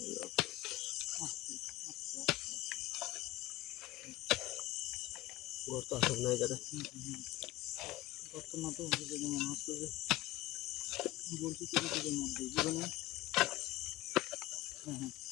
ঘর তো আসল না এই জায়গায়। বর্তমান তো মনে হচ্ছে যে বলছি কিছুর মধ্যে জীবনে। হ্যাঁ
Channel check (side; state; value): right; quieter; 17.3 dB